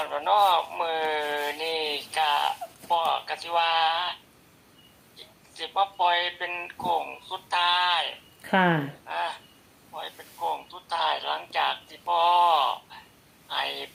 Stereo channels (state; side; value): identical; both; correlation 1.00